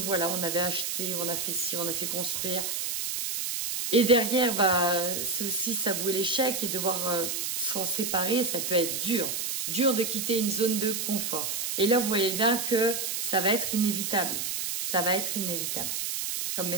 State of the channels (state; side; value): noise; right; hiss, 2 dB below the sound